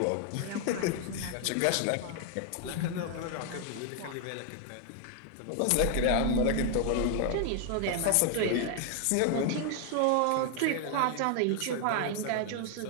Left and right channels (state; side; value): different; both; correlation 0.00